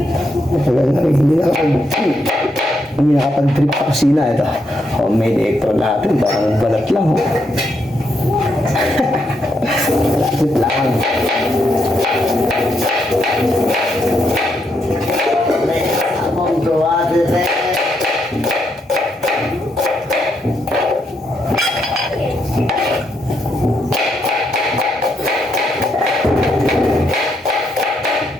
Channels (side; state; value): both; normal; correlation 0.78